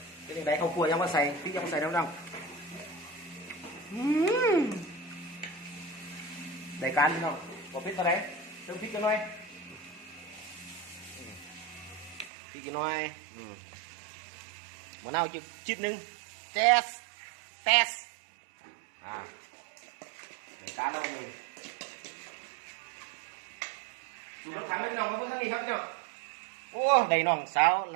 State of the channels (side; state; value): left; drops out; at 12.3 s